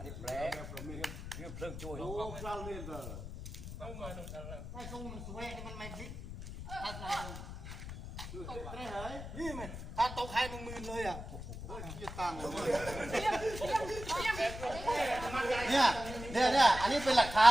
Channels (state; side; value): noise; left; rumble, 9 dB below the sound